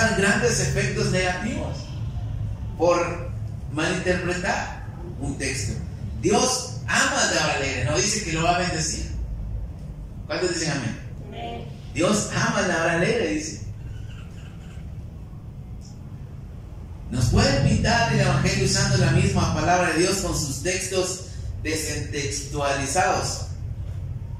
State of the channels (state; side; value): identical; both; correlation 1.00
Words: grandes efectos negativos por malinterpretar un texto. Dios ama al dador alegre, no dice que lo va a bendecir. ¿Cuántos dicen amén? Amén. Dios ama al dador alegre, dice. Nos pueden pintar el evangelio usando la misma palabra de Dios con sus textos descontextualizados.